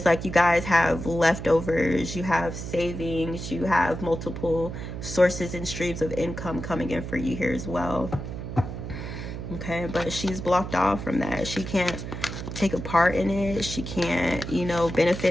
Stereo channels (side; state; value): right; noise; hum, 7 dB below the sound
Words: like you guys have leftovers, you have savings, you have multiple sources and streams of income coming in for you here as well. Okay, but she's blocked off from that. She can't take a part in it. She can't, you know,